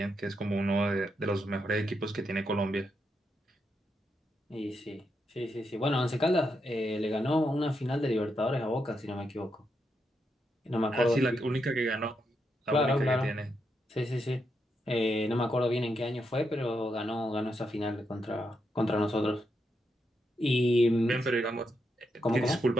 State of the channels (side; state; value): both; normal; correlation 0.82